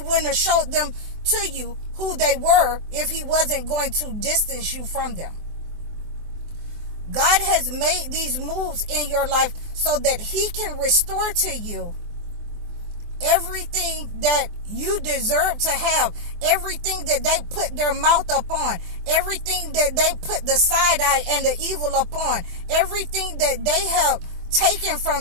have showed them to you who they were if he wasn't going to distance you from them. God has made these moves in your life so that he can restore to you everything that you deserve to have, everything that they put their mouth upon, everything that they put the side eye and the evil upon, everything that they have taken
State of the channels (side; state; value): left; late; 24 ms